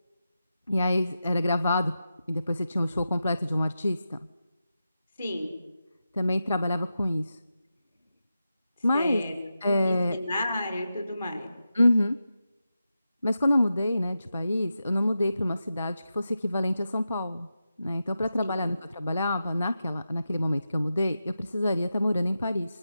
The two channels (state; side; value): inverted; both; correlation -0.90